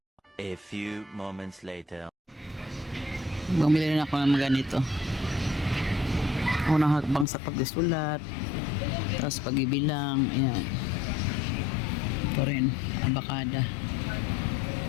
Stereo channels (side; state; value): right; drops out; at 7.2 s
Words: moments later. Bumili rin ako ng mga ganito. Unang hakbang sa pagsusulat. Tapos pag-ibilang. Ayan. Ito rin. Abakada.